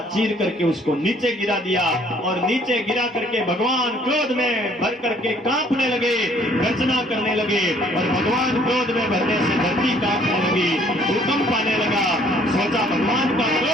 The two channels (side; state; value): both; normal; correlation 0.60